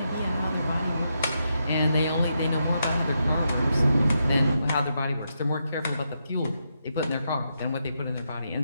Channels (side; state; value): both; inverted; correlation -0.83